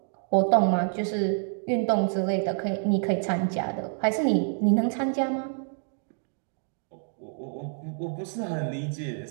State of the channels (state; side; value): silent; left; 60 dB below the other